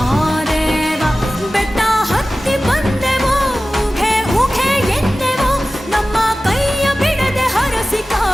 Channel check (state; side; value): normal; both; correlation 0.96